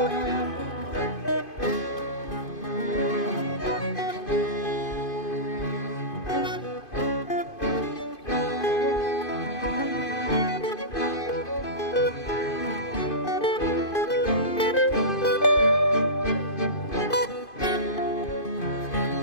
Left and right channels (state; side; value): late; right; 2.5 ms